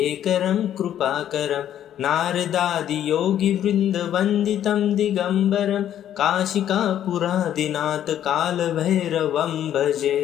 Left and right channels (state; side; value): quieter; right; 10.8 dB